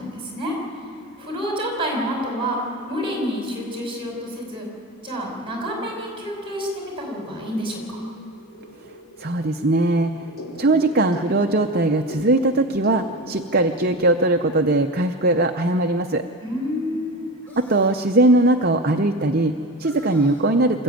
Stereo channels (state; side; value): normal; both; correlation 0.27